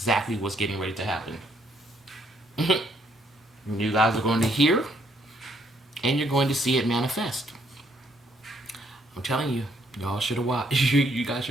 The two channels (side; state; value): both; normal; correlation 0.69